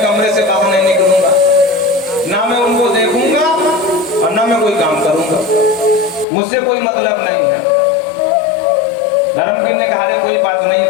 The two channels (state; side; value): drops out; right; at 6.2 s